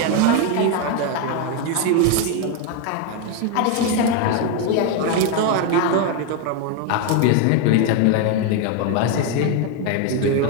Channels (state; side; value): different; both; correlation 0.01